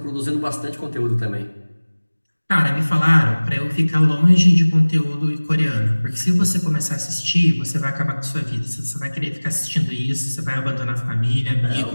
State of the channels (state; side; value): inverted; both; correlation -1.00